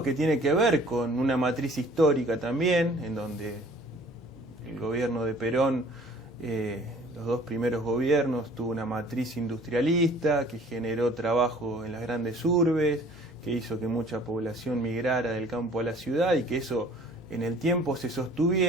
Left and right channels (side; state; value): both; normal; correlation 0.51